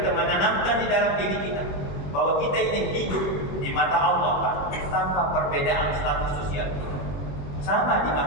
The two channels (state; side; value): late; right; 21 ms